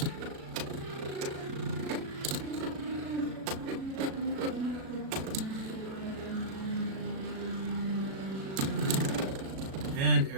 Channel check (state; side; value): late; left; 37 ms